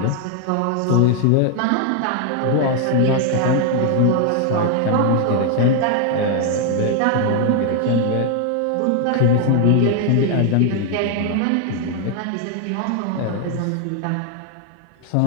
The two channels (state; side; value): different; both; correlation 0.00